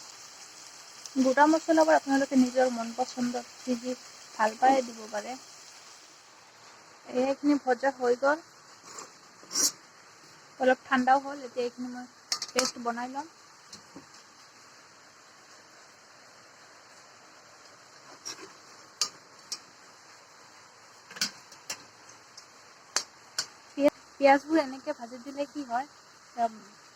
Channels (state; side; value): identical; both; correlation 1.00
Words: গোটা মছলাবোৰ আপোনালোকে নিজৰ মন পচন্দত যি ভাল পায় দিব পাৰে এইখিনি ভজা হৈ গ'ল অলপ ঠাণ্ডাও হ'ল এতিয়া এইখিনি মই পেষ্ট বনাই ল'ম পিঁয়াজবোৰ এনেকৈ ভাজি দিলে কি হয়